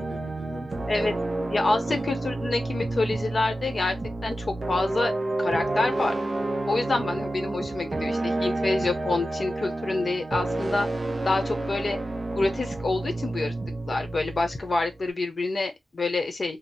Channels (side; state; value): both; normal; correlation 0.93